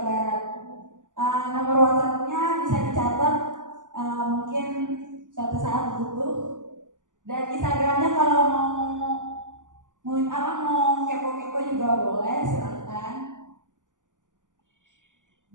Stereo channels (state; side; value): late; left; 0.87 ms